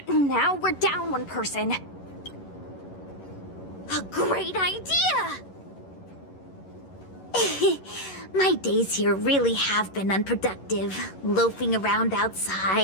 now we're down one person. A great idea! My days here really have been unproductive. Loafing around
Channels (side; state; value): right; late; 11 ms